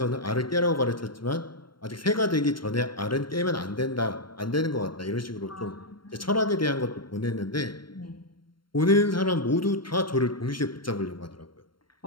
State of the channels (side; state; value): right; late; 0.73 ms